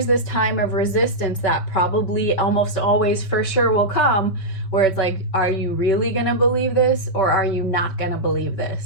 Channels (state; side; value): late; right; 5.2 ms